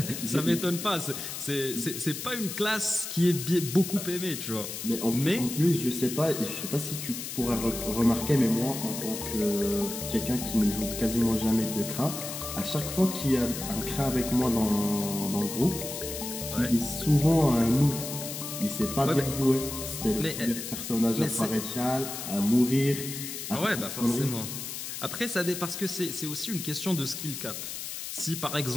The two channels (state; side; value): noise; left; hiss, 7 dB below the sound